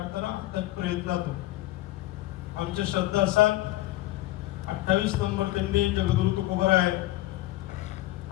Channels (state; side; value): quieter; right; 16.6 dB